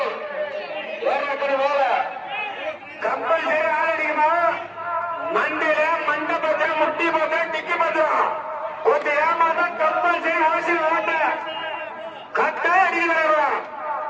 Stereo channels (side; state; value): both; identical; correlation 1.00